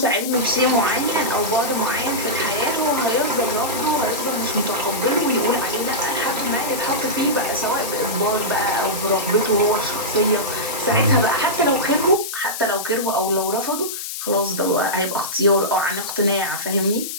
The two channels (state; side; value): noise; left; hiss, 6 dB below the sound